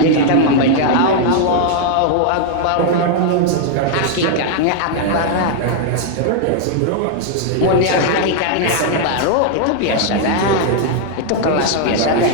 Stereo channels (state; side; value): different; both; correlation 0.00